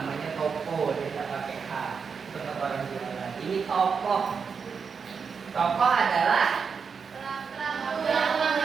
toko, dia tidak pakai H. Untuk orang jualan. Ini tokoh. Tokoh adalah Dalam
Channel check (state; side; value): quieter; left; 5.8 dB